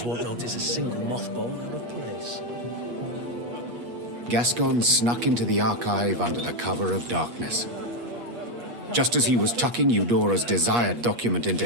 won't notice a single mothball out of place. Gascon snuck into the archive under the cover of darkness. Just as he was tucking Eudora's desired document into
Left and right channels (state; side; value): late; left; 8.4 ms